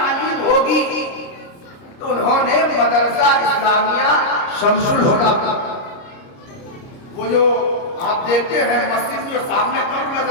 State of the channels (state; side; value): late; right; 29 ms